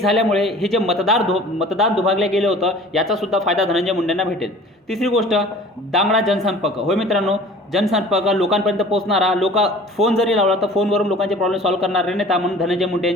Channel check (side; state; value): both; normal; correlation 0.45